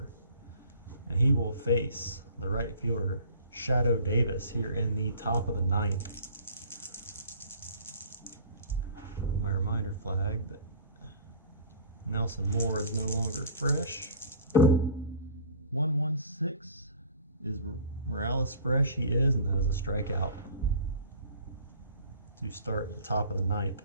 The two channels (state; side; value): inverted; both; correlation -0.45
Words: And he will face the right fielder, Shadow Davis, here in the top of the 9th. reminder flag that Nelson Moore is no longer fresh. 1-1-6 is Morales fresh? He is, and that is a strikeout to start the top of the ninth.